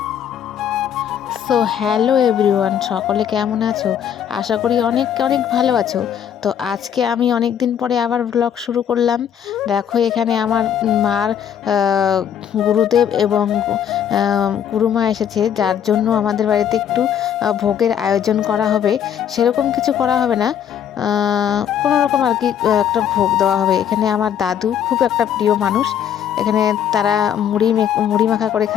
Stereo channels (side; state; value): right; quieter; 9.1 dB